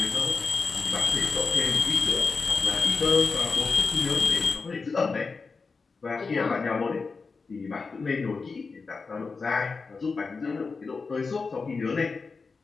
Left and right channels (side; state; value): right; quieter; 4.5 dB